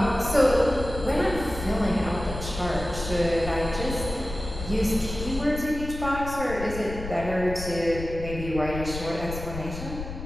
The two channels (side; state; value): left; noise; rumble, 9 dB below the sound